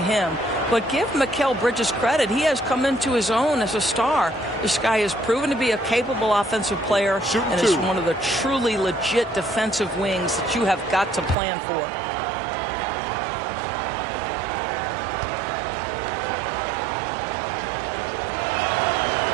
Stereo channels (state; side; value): drops out; left; at 11.4 s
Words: him. But give Mikal Bridges credit. He has come into his own as a star. This guy has proven to be a capable offensive player and is one of the truly legit defensive wings that you have got to plan for.